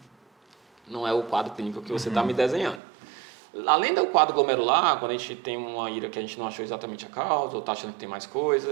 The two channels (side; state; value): left; drops out; at 2.8 s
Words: não é o quadro clínico que você está me desenhando. Além do quadro glomerular, quando a gente tem uma IRA que a gente não achou exatamente a causa, ou está achando que tem mais